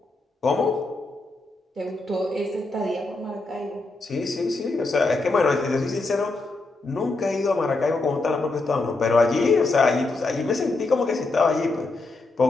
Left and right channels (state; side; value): quieter; right; 3.3 dB